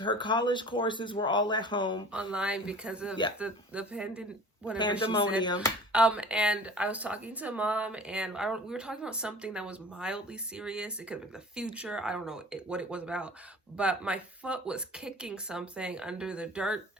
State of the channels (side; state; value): both; normal; correlation 0.43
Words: her college courses were all at home. Online because of the pandemic. Pandemonium. And I was talking to Mom, and we were talking about something that was mildly serious. It could have been the future. I don't know what it was about. But my foot was kicking something under the dirt,